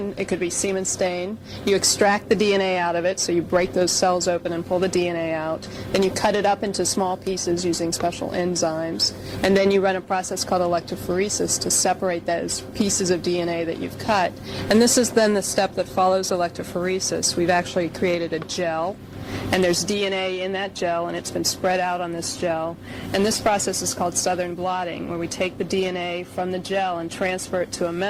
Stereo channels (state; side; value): identical; both; correlation 1.00